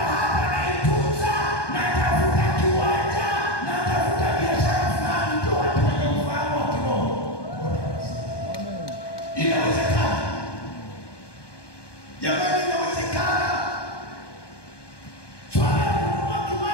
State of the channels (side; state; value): right; late; 1.2 ms